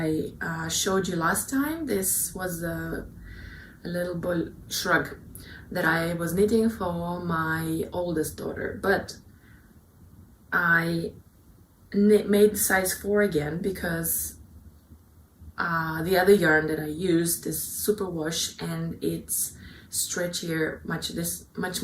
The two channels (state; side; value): identical; both; correlation 1.00